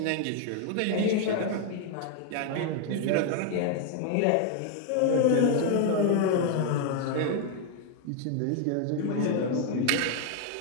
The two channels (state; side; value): different; both; correlation 0.01